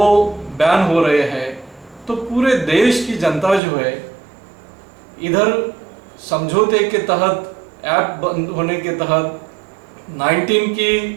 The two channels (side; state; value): left; drops out; at 3.6 s